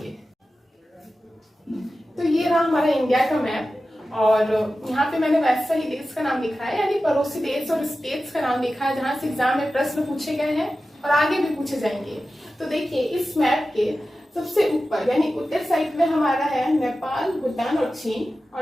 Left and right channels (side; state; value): both; normal; correlation 0.94